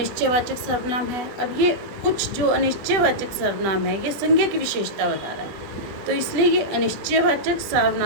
सर्वनाम है। अब ये कुछ जो अनिश्चयवाचक सर्वनाम है, ये संज्ञा की विशेषता बता रहा है, तो इसलिए ये अनिश्चयवाचक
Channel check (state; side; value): late; left; 20 ms